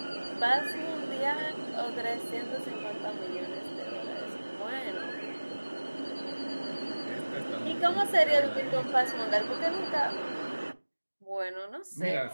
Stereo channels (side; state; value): both; inverted; correlation -1.00